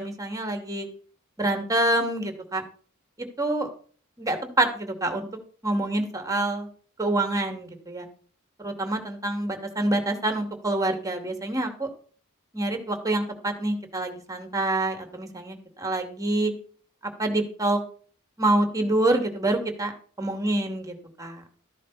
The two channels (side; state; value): both; normal; correlation 0.57